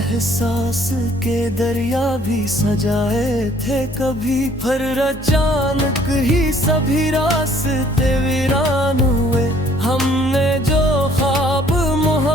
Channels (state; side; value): normal; both; correlation 0.60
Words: के दरिया भी सजाए थे कभी। फिर अचानक ही सभी रास्ते वीरान हुए, हमने जो ख्वाब